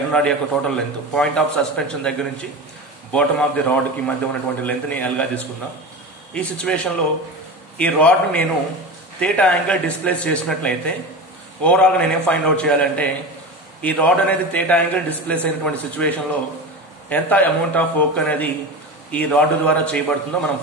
రాడ్ యొక్క total length point of suspension దగ్గర నుంచి బాటమ్ ఆఫ్ ది రాడ్కి మధ్య ఉన్నటువంటి లెంత్ని ఎల్గా తీసుకుందాం. ఈ సిచ్యువేషన్లో ఈ రాడ్ని నేను థీటా యాంగిల్ డిస్ప్లేస్ చేసినట్లయితే ఓవరాల్గా నేనేం ఫైండ్ అవుట్ చేయాలంటే ఈ రాడ్ అనేది థీటా యాంగిల్ డిస్ప్లేస్ అయినటువంటి సిచ్యువేషన్లో ఎంత అమౌంట్ ఆఫ్ వర్క్ అనేది ఈ రాడ్ ద్వారా చేయబడుతుందో మనం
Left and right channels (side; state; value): both; normal; correlation 0.26